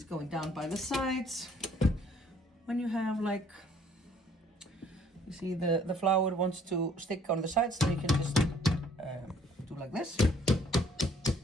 going down by the sides. When you have like, you see the flour wants to stick on the sides, then you can just do like this.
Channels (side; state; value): both; normal; correlation 0.60